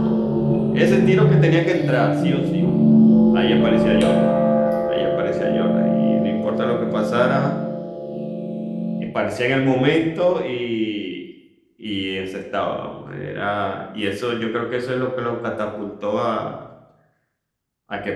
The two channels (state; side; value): identical; both; correlation 1.00